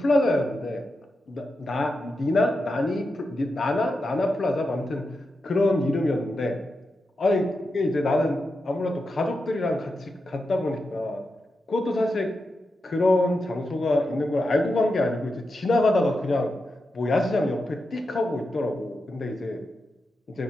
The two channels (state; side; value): normal; both; correlation 0.88